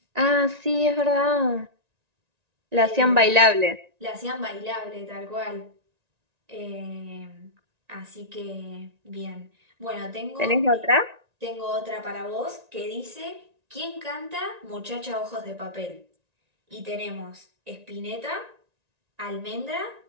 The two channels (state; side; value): late; left; 1.9 ms